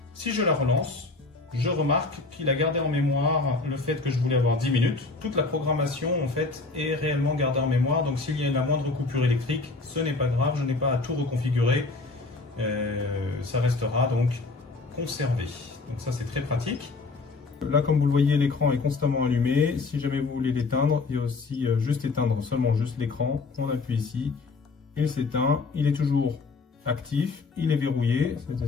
Si je la relance, je remarque qu'il a gardé en mémoire le fait que je voulais avoir 10 minutes. Toute la programmation, en fait, est réellement gardée en mémoire. Donc, s'il y a la moindre coupure électrique, ce n'est pas grave. Je n'ai pas à tout reconfigurer. Ça restera donc conservé. Donc, ça, c'est très pratique. Là, comme vous le voyez, l'écran est constamment allumé. Si jamais vous voulez l'éteindre, il y a aussi juste éteindre seulement juste l'écran. On appuie ici, il s'éteint. Il est toujours actif, il est verrouillé.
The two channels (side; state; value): right; quieter; 3.8 dB